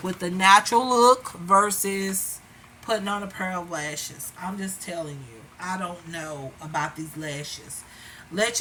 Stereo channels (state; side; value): identical; both; correlation 1.00